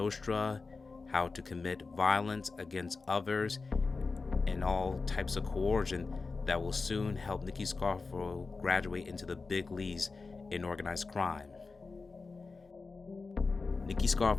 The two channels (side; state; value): right; quieter; 4.1 dB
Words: how to commit violence against others, and all types of coercion that will soon help Nicky Scarfo graduate into the big leagues in organized crime. Nicky